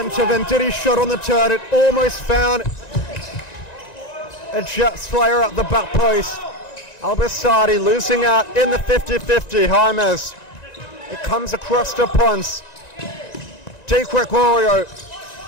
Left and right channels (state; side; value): late; right; 1.9 ms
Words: Venditti shot on the turn. It almost found a Jets player at the back post. Al-Basaidi losing out in the 50-50. James. It comes across to Ponce. Di Gregorio.